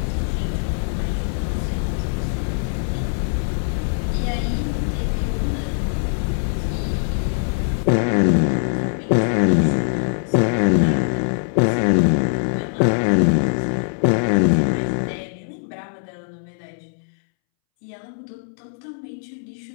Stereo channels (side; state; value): right; silent; 64 dB below the other